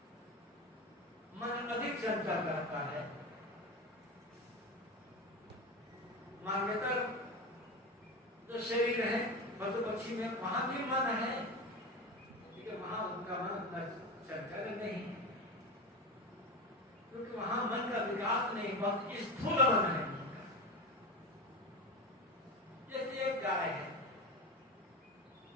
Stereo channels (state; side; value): normal; both; correlation 0.23